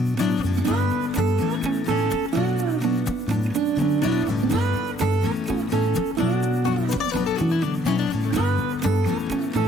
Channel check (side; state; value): both; normal; correlation 0.66